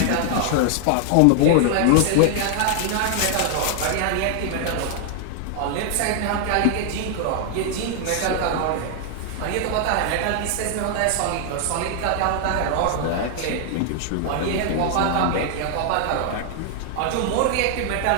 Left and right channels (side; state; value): both; different; correlation 0.00